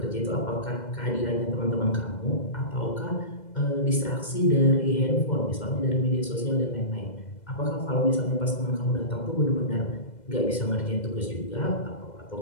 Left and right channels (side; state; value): right; late; 2.0 ms